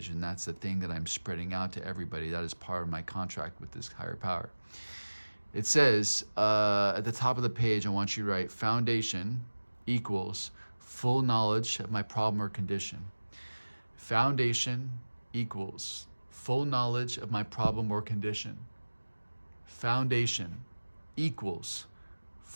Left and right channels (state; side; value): inverted; both; correlation -1.00